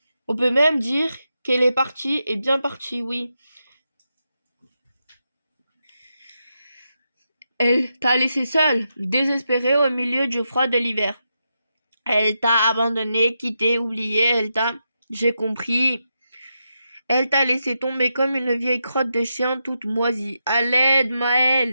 On peut même dire qu'elle est partie et bien partie, oui. Elle t'a laissé seule, désespérée au milieu du froid de l'hiver. Elle t'a abandonné, quitté, oublié, elle t'a... J'ai compris. Elle t'a laissé tomber comme une vieille crotte de chien toute moisie. À l'aide,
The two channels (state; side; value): inverted; both; correlation -0.86